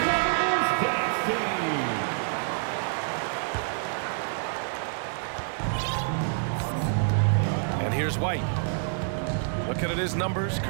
And here's White. Looking at his numbers,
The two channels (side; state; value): left; silent; 60 dB below the other